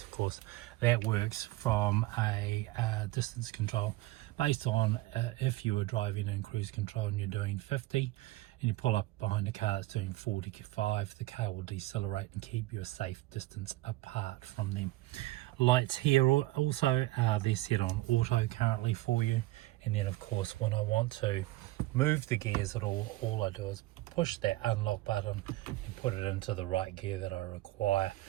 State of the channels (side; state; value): left; quieter; 18.2 dB